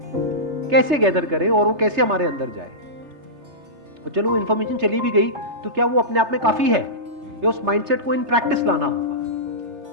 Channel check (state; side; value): late; left; 3.3 ms